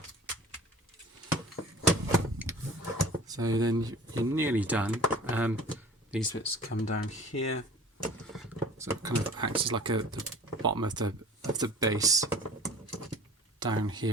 So then you're nearly done. These bits come down here, so it kind of acts as like the bottom of the base down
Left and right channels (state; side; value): normal; both; correlation 0.44